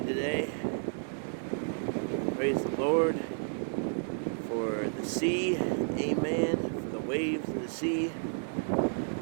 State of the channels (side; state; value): left; silent; digital silence